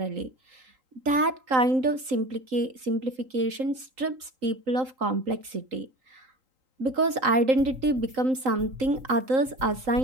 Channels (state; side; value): late; left; 3.8 ms